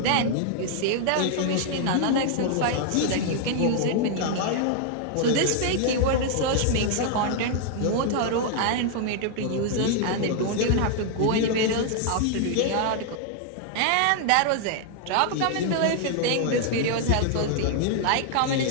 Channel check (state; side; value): different; both; correlation 0.00